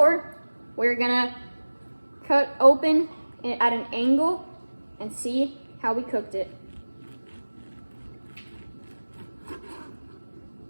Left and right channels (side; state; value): both; inverted; correlation -1.00